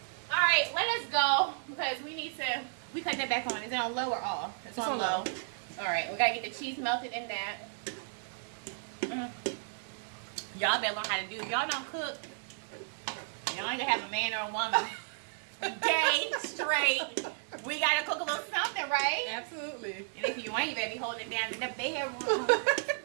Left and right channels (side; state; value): left; silent; digital silence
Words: All right, let us go because we need to. We cut that back on. Is it on low or off? It's on low. All right, we gotta get the cheese melted in that. Y'all better learn how to do. If y'all don't cook, y'all ain't gonna have a man or a woman. Day straight. We gotta cook a little something, right? Absolutely. And if you ain't, you better be holding it down in the bedroom.